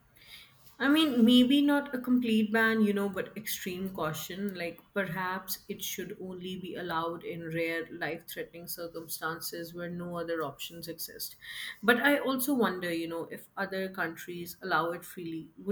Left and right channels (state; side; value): identical; both; correlation 1.00